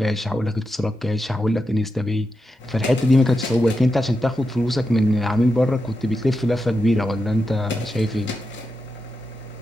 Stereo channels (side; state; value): both; normal; correlation 0.88